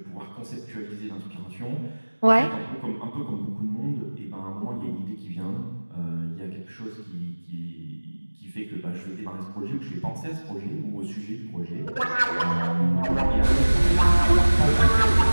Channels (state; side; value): inverted; both; correlation -1.00